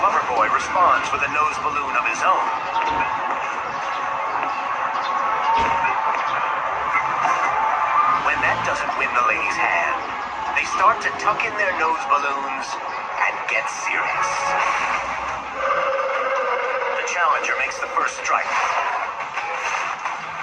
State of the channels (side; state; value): both; identical; correlation 1.00